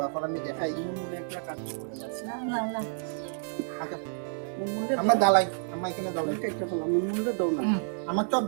এখন আমি দেখাই, আমার দালাই, আমার এখানে দালাই আমার চপ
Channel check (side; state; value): left; silent; 58 dB below the other